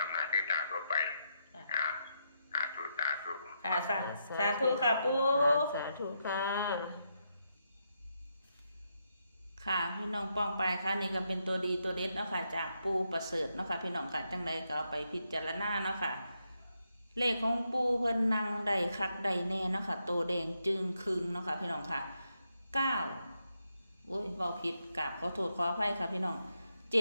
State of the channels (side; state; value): both; inverted; correlation -0.81